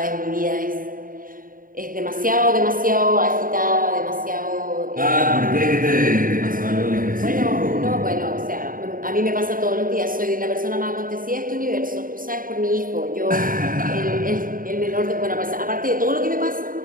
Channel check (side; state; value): left; late; 0.40 ms